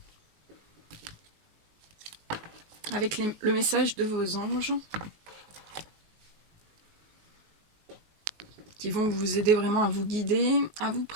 avec le message de vos anges qui vont vous aider vraiment à vous guider, à vous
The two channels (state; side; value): late; left; 19 ms